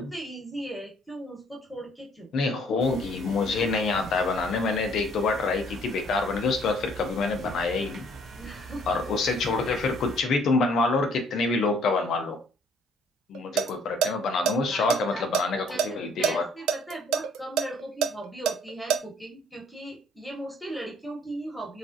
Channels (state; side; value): normal; both; correlation 0.61